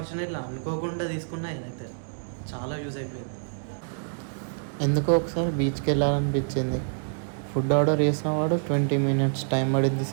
అనుకోకుండా తీసుకున్నా, ఇదైతే చాలా యూజ్ అయిపోయింది. ఎందుకో ఒకసారి బీచ్కి వెళ్ళాలనిపించింది. ఫుడ్ ఆర్డర్ చేసిన వాడు 20 minutes టైం పడింది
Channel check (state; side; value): silent; left; 60 dB below the other